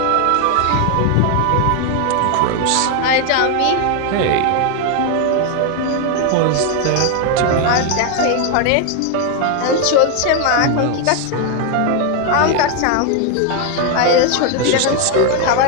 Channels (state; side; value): different; both; correlation 0.01